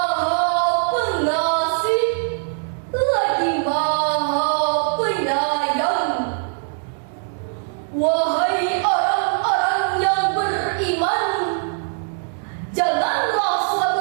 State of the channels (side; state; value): left; silent; 65 dB below the other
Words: pengasih lagi maha penyayang. Wahai orang-orang yang beriman, janganlah